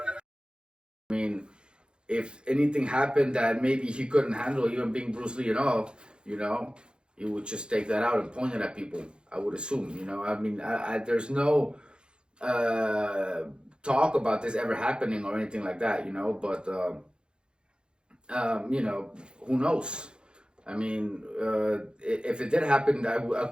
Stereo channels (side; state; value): left; late; 0.050 ms